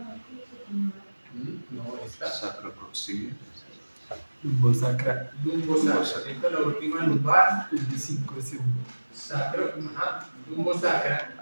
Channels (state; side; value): inverted; both; correlation -1.00